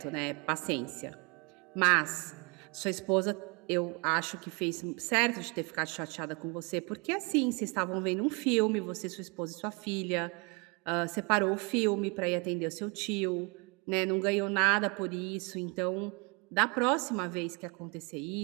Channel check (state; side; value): quieter; left; 30.9 dB